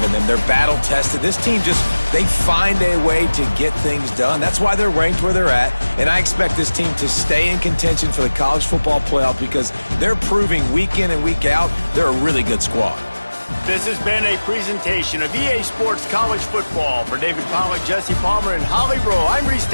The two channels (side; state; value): both; inverted; correlation -1.00